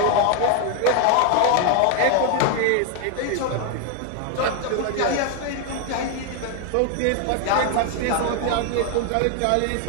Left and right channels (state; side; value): different; both; correlation 0.01